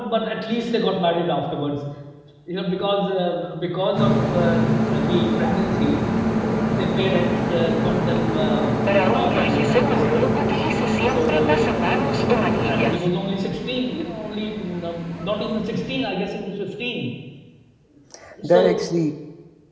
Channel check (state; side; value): identical; both; correlation 1.00